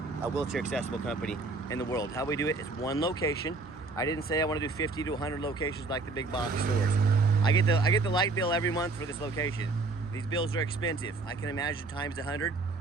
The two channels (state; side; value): quieter; left; 3.6 dB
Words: wheelchair accessible company in the world. How we do it is one location. I didn't say I want to do 50 to 100 locations like the big box stores. I get the light bill every month for this location. These bills are expensive. I can imagine times 100.